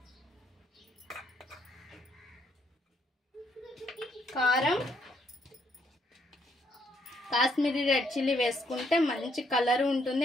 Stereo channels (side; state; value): both; normal; correlation 0.72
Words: కారం, కాశ్మీరీ రెడ్ చిల్లీ వేసుకుంటే మంచి కలర్ ఉంటుంది